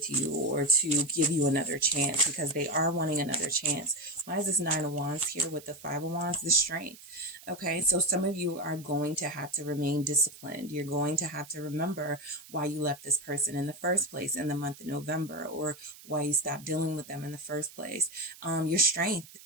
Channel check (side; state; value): right; noise; hiss, 19 dB below the sound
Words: you or to give you another chance? Because they are wanting another chance. Why is this Nine of Wands here with the Five of Wands? The strength. Okay, so some of you are going to have to remain disciplined. You're going to have to remember why you left this person in the first place in the month of November, or why you stopped dealing with them in the first place. Your strength